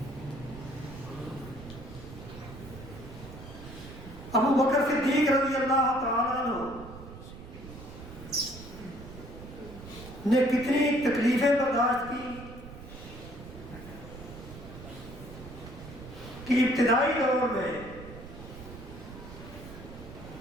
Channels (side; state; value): right; noise; rumble, 14 dB below the sound